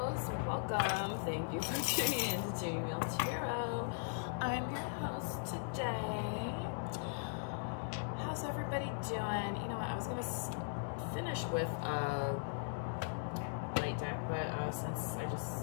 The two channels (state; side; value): silent; right; digital silence